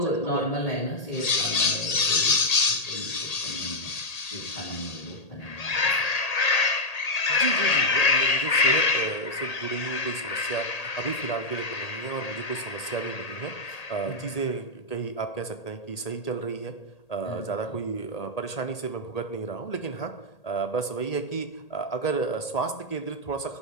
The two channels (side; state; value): right; late; 1.8 ms